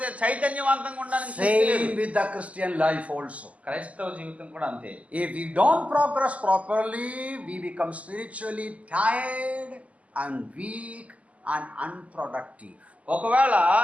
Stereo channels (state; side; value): late; left; 0.069 ms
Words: చైతన్యవంతంగా ఉండడానికి శక్తి లేదు. Same with the Christian life also. క్రైస్తవ జీవితం కూడా అంతే. If we don't progress properly, we become spiritually tired and weak and unproductive. ఒకవేళ